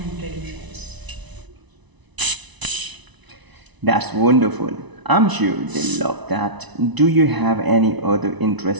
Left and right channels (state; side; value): late; left; 1.0 ms